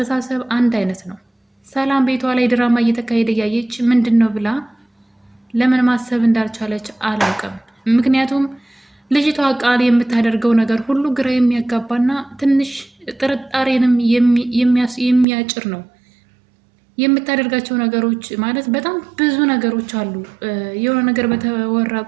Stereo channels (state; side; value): drops out; left; at 15.2 s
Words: አንድ አይነት ነው። ሰላም ቤቷ ላይ ድራማ እየተካሄደ እያየች ምንድን ነው ብላ ለምን ማሰብ እንዳልቻለች አላውቅም። ምክንያቱም ልጅቷ ቃል የምታደርገው ነገር ሁሉ ግራ የሚያጋባና ትንሽ ጥርጣሬንም የሚያጭር ነው። የምታደርጋቸው ነገሮች ማለት በጣም ብዙ ነገሮች አሉ። የሆነ ነገር በተወራ